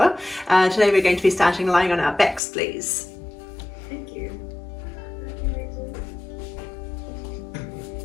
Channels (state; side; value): drops out; right; at 2.4 s